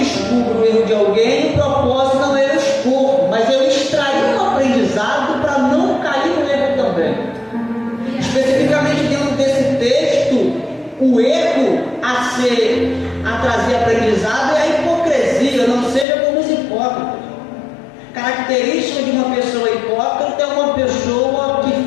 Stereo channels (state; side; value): drops out; right; at 16.1 s